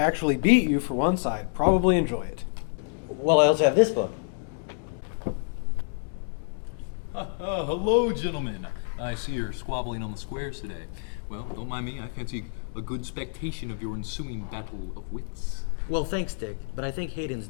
beat you for once, I'd probably enjoy it. Well, I also have this book. Hello, gentlemen. I see you're squabbling on the squares today. Well, don't mind me. I fancy a good spectation of your ensuing battle of wits. Well, thanks, Dick, but I think Hayden's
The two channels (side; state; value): right; silent; digital silence